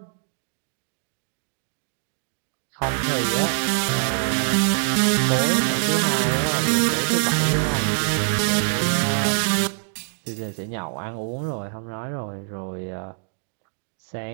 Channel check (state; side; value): silent; left; digital silence